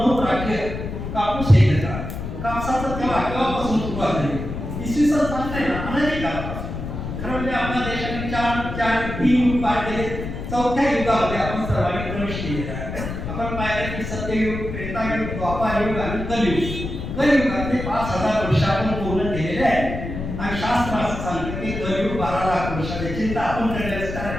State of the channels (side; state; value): left; noise; rumble, 6 dB below the sound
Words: राज्य कापूस हे घेतात. कापसाचं तेव्हा केव्हापासून सुरुवात झाली इसवी सन सांगताय ना अनेक काळापासून. खरं म्हणजे आपल्या देशाने 3 युग पार केले. 4थ्या युगामध्ये आपण सर्वांनी प्रवेश केलेला आहे. आपण पाहिलं की सत्ययुग त्रेतायुग द्वापारयुग आणि कलियुग. कलियुगातले 5,000 वर्ष आपण पूर्ण केलेले आहे. आणि शास्त्र असं सांगतं की कलियुग 12 लाख वर्षाची चिंता आपण करण्याचं कारण